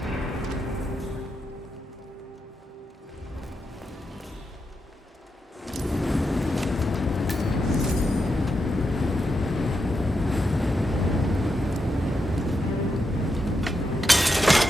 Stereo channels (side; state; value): both; normal; correlation 0.85